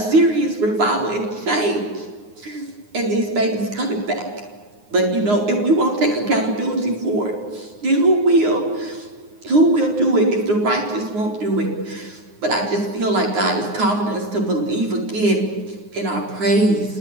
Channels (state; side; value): late; left; 9.6 ms